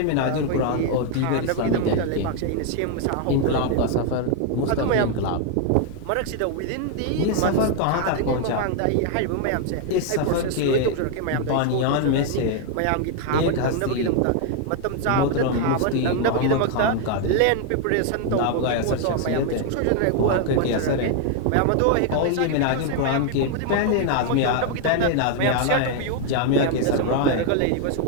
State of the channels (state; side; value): different; both; correlation 0.00